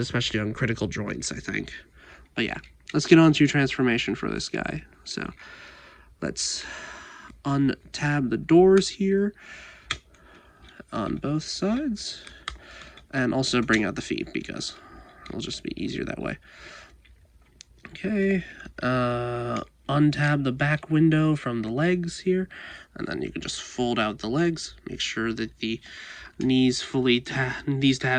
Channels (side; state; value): both; identical; correlation 1.00